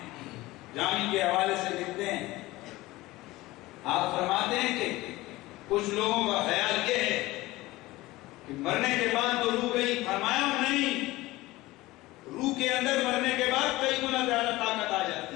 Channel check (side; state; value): right; quieter; 19.0 dB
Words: جامی کے حوالے سے لکھتے ہیں، آپ فرماتے ہیں کہ کچھ لوگوں کا خیال یہ ہے کہ مرنے کے بعد تو روح گئی. فرمایا نہیں، روح کے اندر مرنے کے بعد کئی گنا زیادہ طاقت آ جاتی